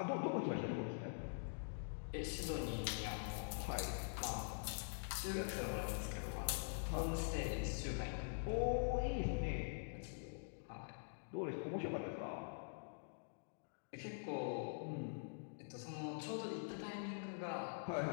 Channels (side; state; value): right; silent; digital silence